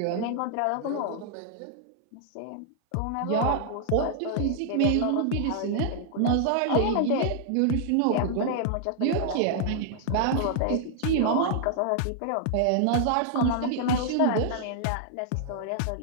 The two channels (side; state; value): both; different; correlation -0.01